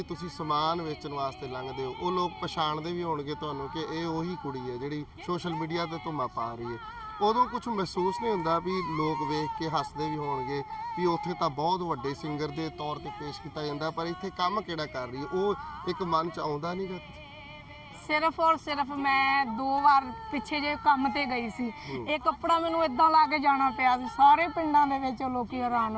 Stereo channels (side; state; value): both; identical; correlation 1.00